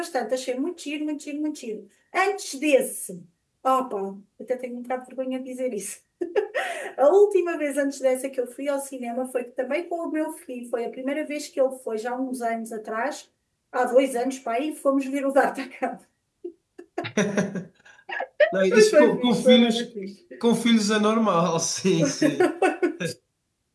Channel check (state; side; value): identical; both; correlation 1.00